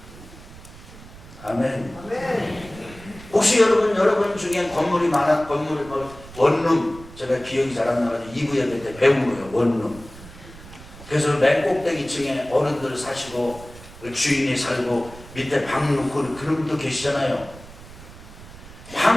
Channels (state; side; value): noise; right; rumble, 18 dB below the sound